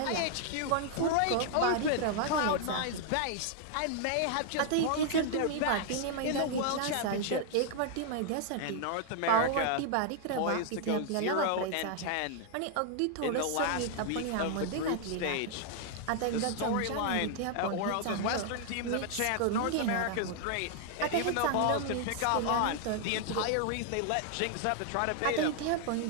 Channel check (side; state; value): both; different; correlation 0.00